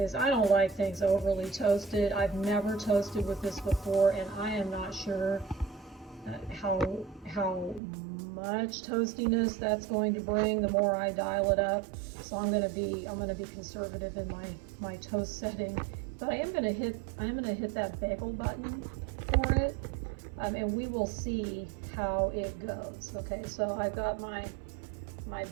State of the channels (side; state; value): left; drops out; at 7.8 s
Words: I don't like things overly toasted. I've never toasted with this before, and I am not sure how much toastiness that's going to bring the more I dial it up. So I'm going to be conservative in my toast setting. But I am going to hit that bagel button for it, and we will see how it goes. Okay, so I've got my